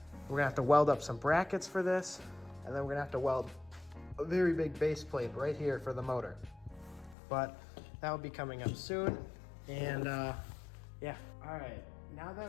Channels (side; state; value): right; drops out; at 7.2 s